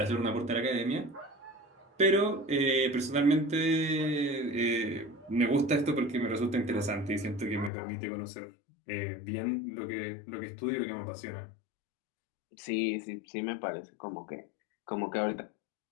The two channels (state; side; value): drops out; right; at 7.7 s